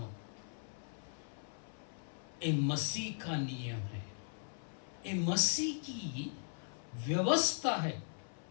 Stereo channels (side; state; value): right; silent; 52 dB below the other